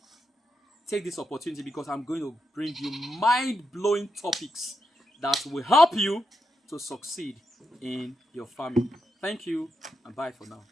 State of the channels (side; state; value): both; normal; correlation 0.85